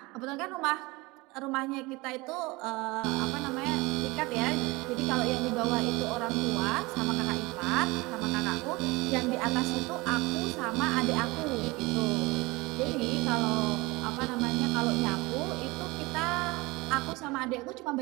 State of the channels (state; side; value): quieter; left; 23.2 dB